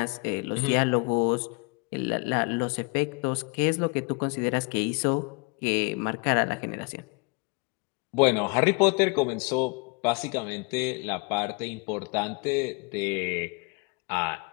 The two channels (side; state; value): right; quieter; 31.3 dB